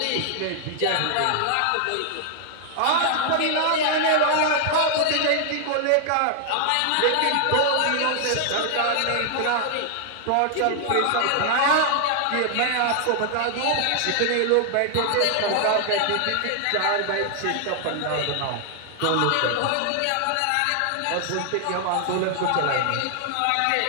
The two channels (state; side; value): different; both; correlation 0.00